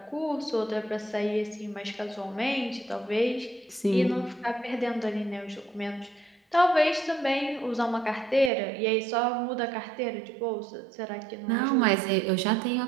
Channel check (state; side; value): drops out; left; at 8.5 s